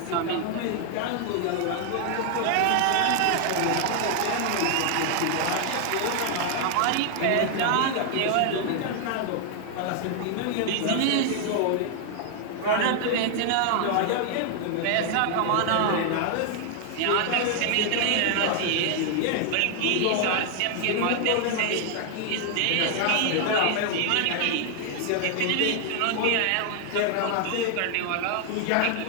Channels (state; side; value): different; both; correlation 0.00